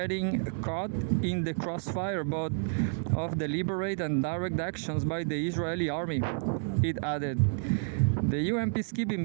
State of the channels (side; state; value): left; silent; 56 dB below the other